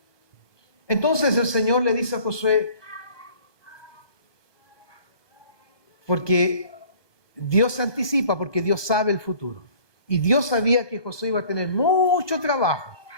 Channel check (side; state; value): right; late; 1.2 ms